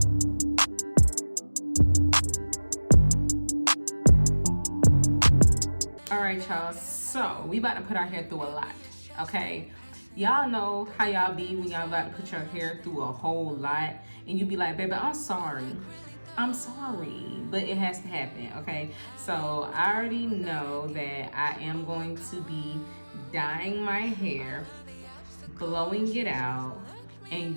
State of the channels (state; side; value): inverted; both; correlation -1.00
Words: All right, y'all, so we about to put our hair through a lot, okay? Y'all know how y'all be when y'all about to put your hair through a whole lot and you be like, baby, I'm sorry, but it has to happen, okay? So I already know that I am going to be dyeing my hair, blowing it out,